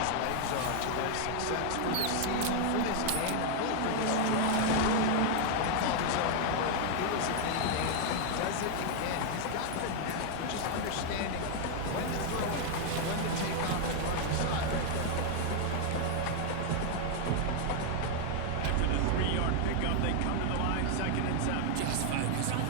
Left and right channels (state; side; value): different; both; correlation 0.00